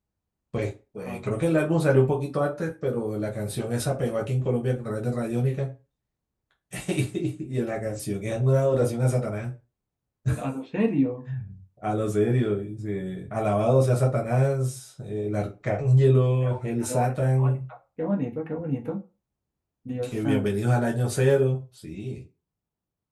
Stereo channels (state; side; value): identical; both; correlation 1.00